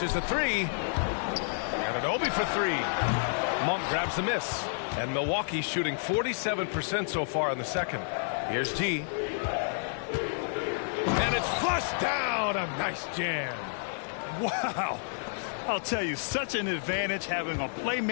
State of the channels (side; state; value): right; silent; digital silence